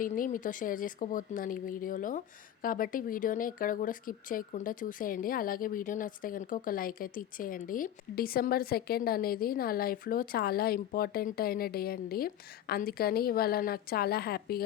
మీతో షేర్ చేసుకోబోతున్నాను ఈ వీడియోలో. కాబట్టి వీడియోని ఎక్కడ కూడా స్కిప్ చేయకుండా చూసేయండి. అలాగే వీడియో నచ్చితే గనుక ఒక లైక్ అయితే ఇచ్చేయండి. డిసెంబర్ 2 అనేది నా లైఫ్‌లో చాలా ఇంపార్టెంట్ అయిన డే అండి. అందుకని ఇవాళ నాకు చాలా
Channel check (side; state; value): right; quieter; 11.1 dB